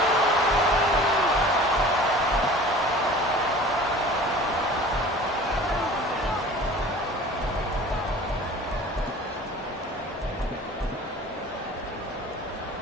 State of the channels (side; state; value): both; normal; correlation 0.43